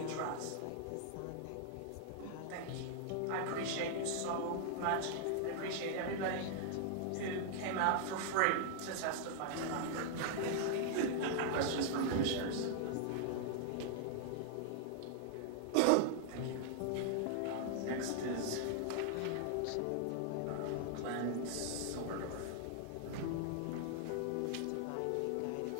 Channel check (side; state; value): both; different; correlation 0.00